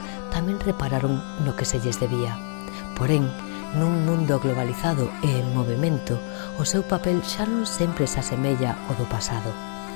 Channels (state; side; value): silent; right; 57 dB below the other